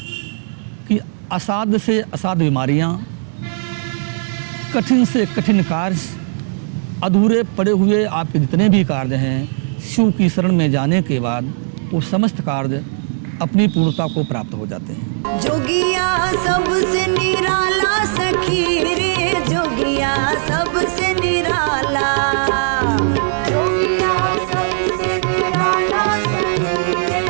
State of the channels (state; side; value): silent; left; digital silence